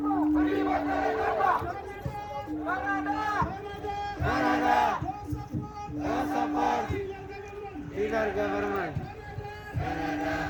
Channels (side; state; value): both; identical; correlation 1.00